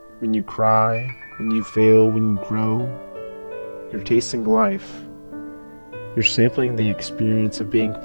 when you cry, when you fail, when you grow, you're tasting life. You're sampling the experience of being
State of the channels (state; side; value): inverted; both; correlation -1.00